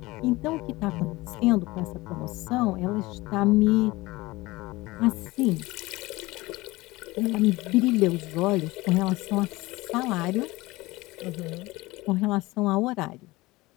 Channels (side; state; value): right; quieter; 20.6 dB